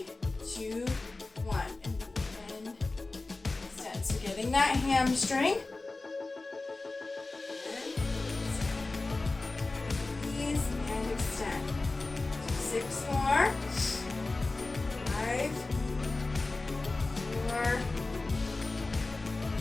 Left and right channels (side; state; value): right; quieter; 3.3 dB